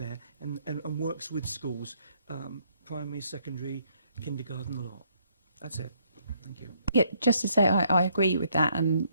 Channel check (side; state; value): both; inverted; correlation -0.68